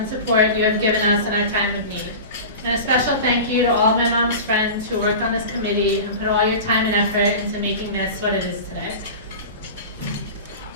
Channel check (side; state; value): both; inverted; correlation -0.32